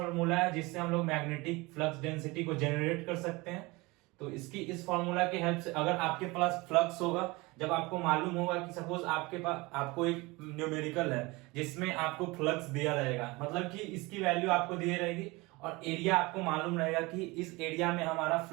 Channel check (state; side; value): quieter; left; 23.6 dB